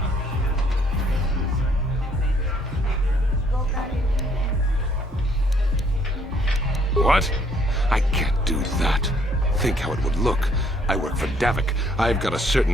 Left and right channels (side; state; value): both; normal; correlation 0.65